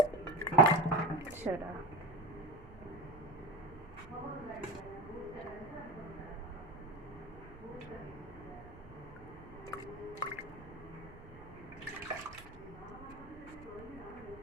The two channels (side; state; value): right; noise; rumble, 17 dB below the sound